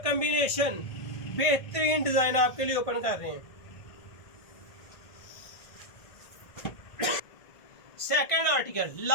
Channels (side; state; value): right; late; 1.5 ms